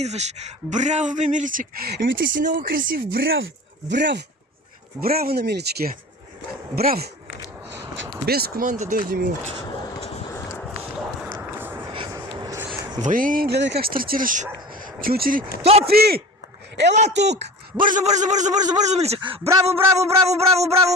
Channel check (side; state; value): both; normal; correlation 0.36